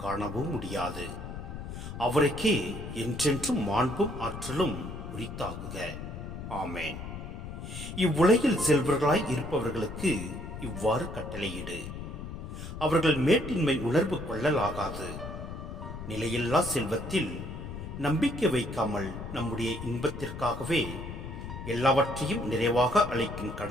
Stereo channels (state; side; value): noise; left; rumble, 9 dB below the sound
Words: காணவும் முடியாது. அவருக்கே என்றென்றும் மாண்பும் ஆற்றலும் உரித்தாகுக. ஆமேன். இவ்வுலகில் செல்வர்களாய் இருப்பவர்களுக்கு இவ்வாறு கட்டளையிடு. அவர்கள் மேட்டின்மை உணர்வு கொள்ளலாகாது. நிலையில்லா செல்வத்தில் நம்பிக்கை வைக்காமல் நம்முடைய இன்பத்திற்காகவே எல்லாவற்றையும் நிறைவாக அளிக்கும்